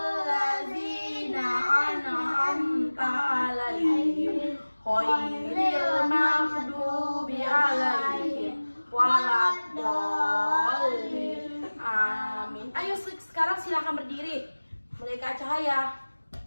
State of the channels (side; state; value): both; inverted; correlation -1.00